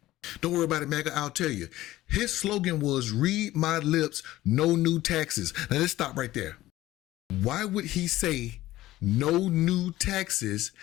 Don't worry about it, MAGA, I'll tell you. His slogan was, read my lips, no new taxes. Now let's stop right there. Why would he say no new taxes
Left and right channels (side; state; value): right; quieter; 15.9 dB